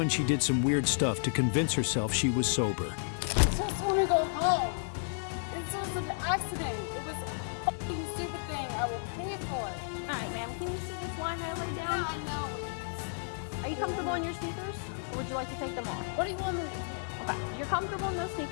she did some weird stuff to convince herself she was sober. I just want to go home. This was an accident. It was a fucking stupid thing. I will pay for it. Alright, ma'am, can you see this line I laid down? Yeah, I know. Are you comfortable in your sneakers? Or would you like to take them off? What do you want me to do? Okay, you're comfortable in those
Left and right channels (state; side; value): silent; right; 56 dB below the other